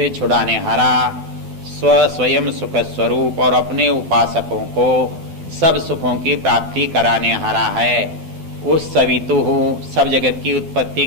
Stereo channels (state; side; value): late; left; 12 ms